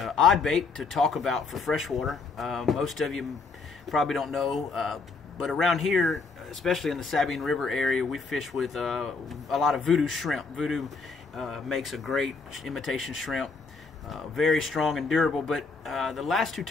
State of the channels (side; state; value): right; quieter; 4.4 dB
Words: odd bait to talk about for freshwater. Most of you probably don't know, but around here, especially in the Sabine River area, we fish with a lot of voodoo shrimp. Voodoo makes a great imitation shrimp. Very strong and durable, but the last two